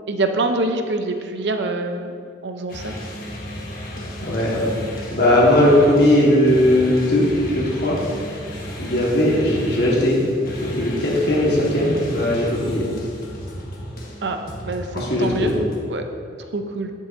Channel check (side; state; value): both; normal; correlation 0.51